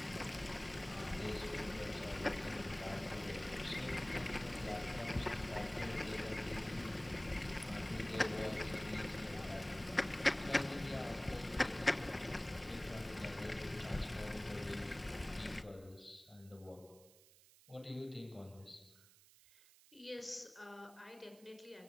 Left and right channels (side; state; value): right; noise; hiss, 24 dB below the sound